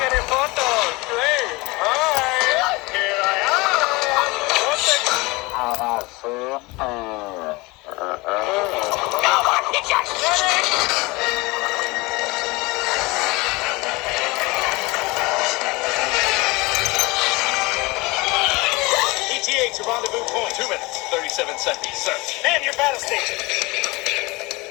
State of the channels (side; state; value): right; quieter; 23.8 dB